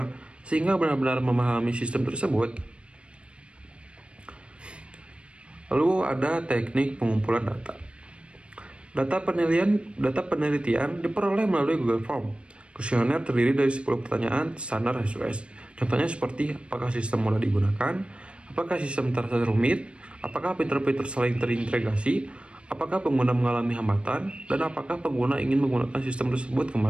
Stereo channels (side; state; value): left; late; 0.058 ms